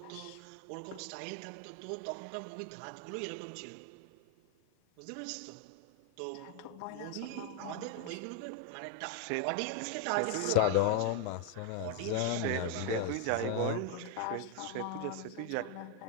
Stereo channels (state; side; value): different; both; correlation 0.00